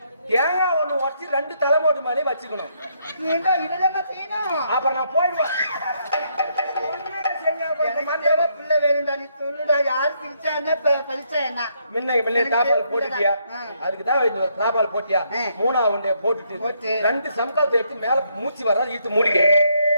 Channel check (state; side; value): inverted; both; correlation -0.73